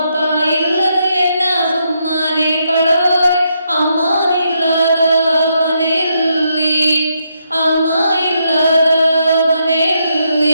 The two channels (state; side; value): inverted; both; correlation -0.78